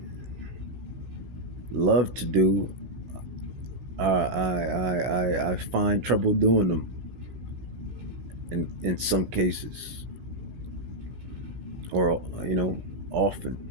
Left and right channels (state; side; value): late; left; 17 ms